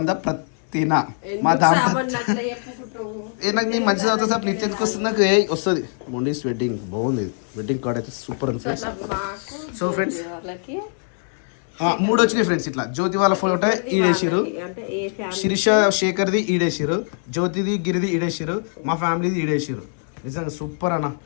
ప్రతిన మా దాంపత్య నాకు నేను మంచిగా చదువుతా సార్. నీకు ఎందుకు వస్తుంది? నాకు వస్తుంది. మొండీస్ వెడ్డింగ్ బాగుంది. వెడ్డింగ్ కార్డ్ అయితే సూపర్ ఉంది ఫ్రెండ్స్. సో ఫ్రెండ్స్ 3 వచ్చినాయి ఫ్రెండ్స్. ఇట్లా జ్యోతి వాళ్ళ ఫోటో ఈడేసారు, శిరీష శేఖర్ది ఈడేసారు, జ్యోతిది గిరిది ఈడేసారు, మా ఫ్యామిలీది ఈడేసారు. నిజంగా సూపర్ అన్న.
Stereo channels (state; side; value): silent; right; 64 dB below the other